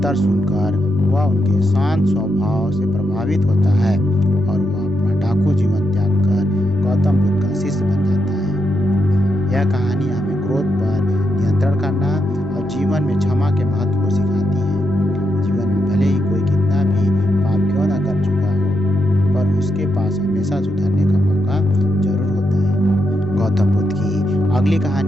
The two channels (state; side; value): normal; both; correlation 0.83